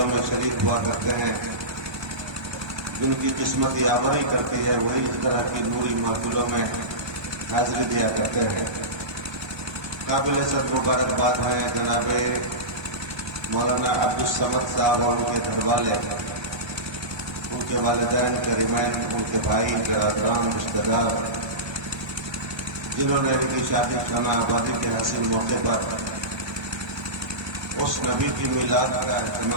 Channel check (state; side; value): late; left; 1.2 ms